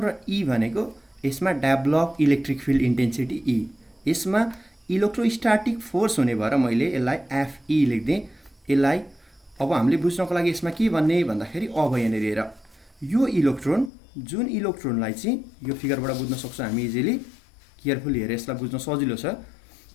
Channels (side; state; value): right; drops out; at 13.9 s